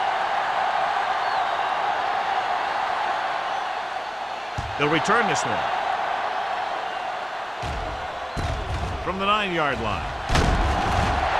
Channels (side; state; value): both; identical; correlation 1.00